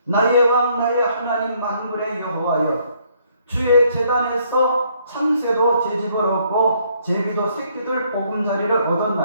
나의 왕 나의 하나님 만물의 여호와여 주의 제단에서 참새도 제집을 얻고 제비도 새끼들 보금자리를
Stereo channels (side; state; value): both; inverted; correlation -0.67